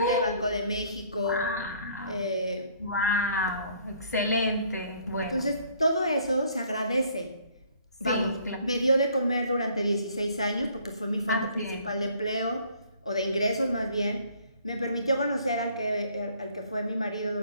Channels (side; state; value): both; inverted; correlation -0.60